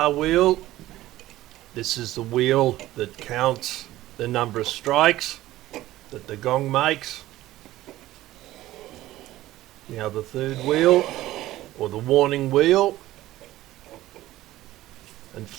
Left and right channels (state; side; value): quieter; left; 15.7 dB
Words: wheel. This is the wheel that counts the number of strikes that the gong makes. Now the third wheel, or the warning wheel. And